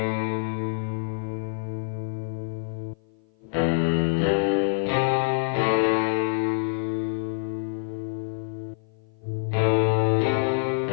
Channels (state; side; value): silent; right; 55 dB below the other